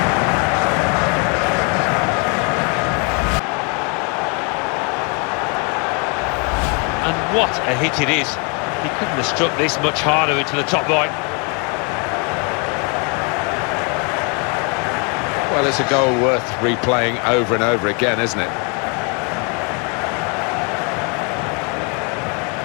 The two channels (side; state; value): right; quieter; 34.7 dB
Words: And what a hit it is. He couldn't have struck this much harder into the top right. Well, it's a goal worth replaying over and over again, isn't it?